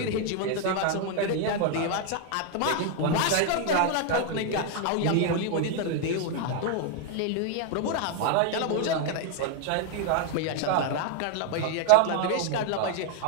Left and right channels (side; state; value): both; different; correlation 0.00